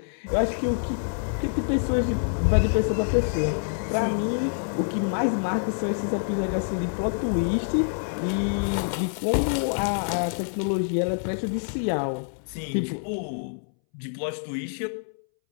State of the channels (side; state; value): right; silent; 61 dB below the other